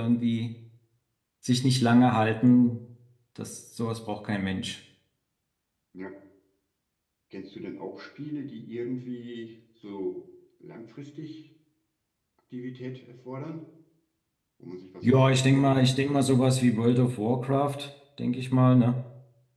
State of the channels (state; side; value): identical; both; correlation 1.00